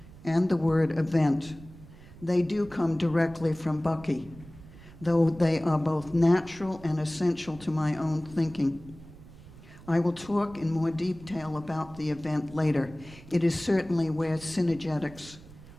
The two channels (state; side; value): noise; right; rumble, 19 dB below the sound